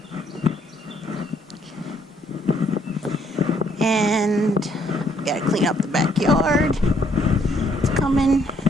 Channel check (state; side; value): normal; both; correlation 0.68